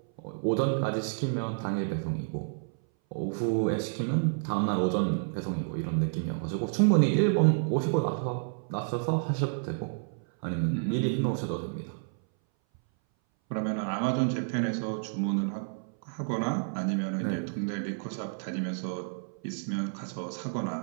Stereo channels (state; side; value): silent; left; 58 dB below the other